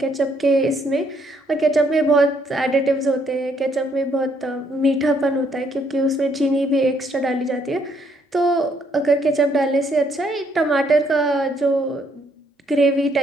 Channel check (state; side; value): normal; both; correlation 0.69